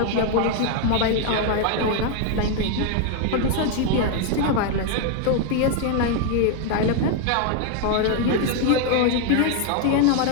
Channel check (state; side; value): different; both; correlation 0.00